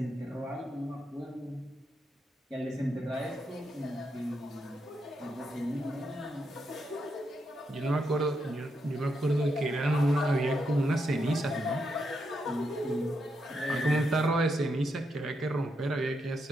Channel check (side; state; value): both; normal; correlation 0.82